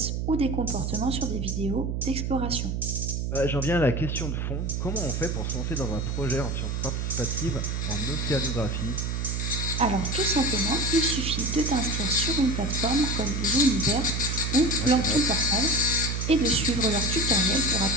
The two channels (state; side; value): noise; right; hum, 1 dB below the sound